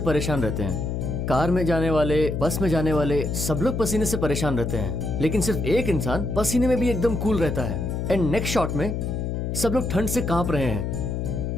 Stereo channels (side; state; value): left; noise; hum, 2 dB below the sound